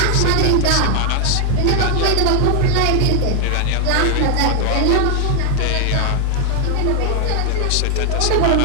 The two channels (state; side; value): different; both; correlation 0.00